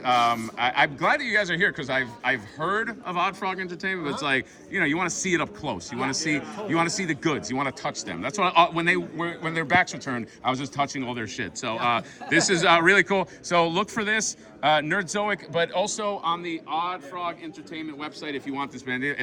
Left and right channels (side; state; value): both; identical; correlation 1.00